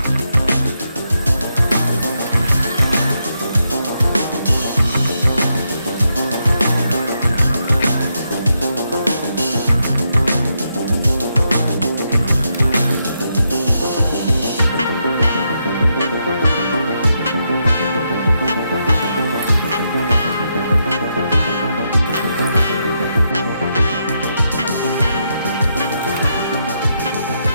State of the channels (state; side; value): inverted; both; correlation -0.82